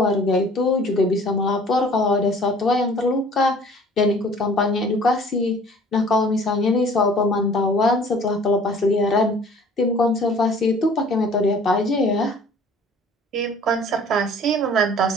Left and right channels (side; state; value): both; normal; correlation 0.51